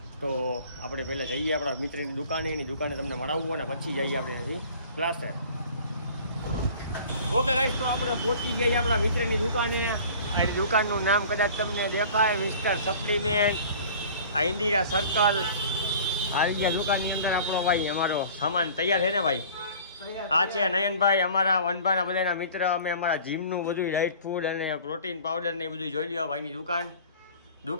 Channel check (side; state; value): both; inverted; correlation -0.46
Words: તો આપણે પહેલાં જઈએ આપણા મિત્રની દુકાને, એની દુકાને તમને મળાવવું અને પછી જઈએ આપણે ત્યાંથી ક્લાસે. ઓકે ગાઈસ, તો આપણે પહોંચી ગયા આપણા મિત્રની દુકાને. એની દુકાનનું નામ કદાચ તમને દેખાય, મિસ્ટર સપ્લિમેન્ટ. આ ઇન્દિરા સર્કલ. આવી ગયા દુકાનની અંદર આપણો ભાઈ, અમારો સામાન તૈયાર છે ને ભાઈ? આ છે નયનભાઈ, અમારા વનભાના બધાના મિત્ર. અમે અમારા જીમનું બધું ડાયટ ફૂડ અને પ્રોટીન પાવડર ને એ બધું જોઈ લ્યો ભાઈની દુકાન.